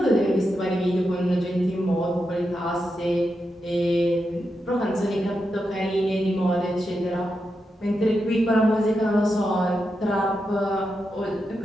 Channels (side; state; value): both; normal; correlation 0.87